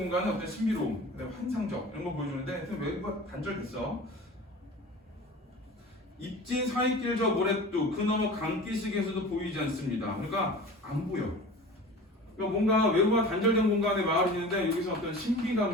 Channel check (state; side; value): normal; both; correlation 0.38